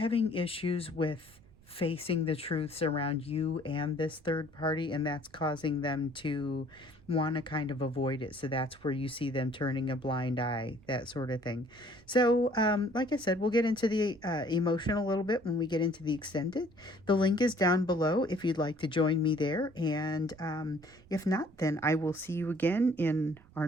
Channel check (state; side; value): noise; right; rumble, 26 dB below the sound